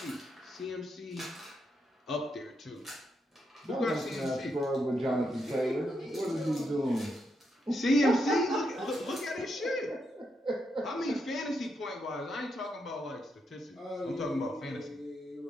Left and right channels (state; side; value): normal; both; correlation 0.81